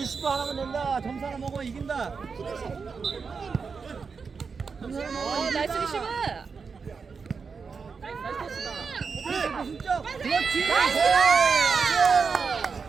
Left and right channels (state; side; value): quieter; left; 5.3 dB